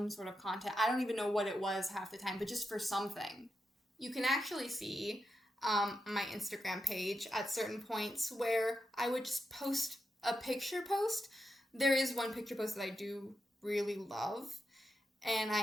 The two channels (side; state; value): both; normal; correlation 0.87